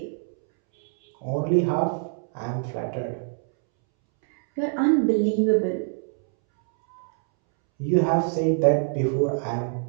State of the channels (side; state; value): left; silent; 62 dB below the other